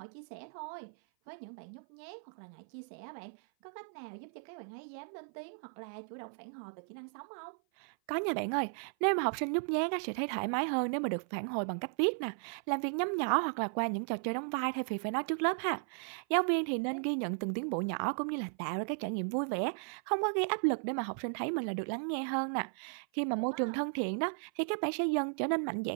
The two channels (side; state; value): left; silent; 54 dB below the other